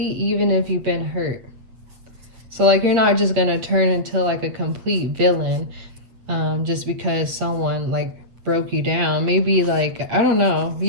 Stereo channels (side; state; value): left; late; 8.0 ms